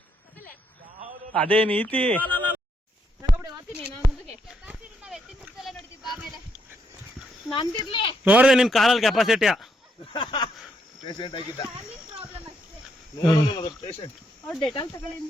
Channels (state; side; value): normal; both; correlation 0.77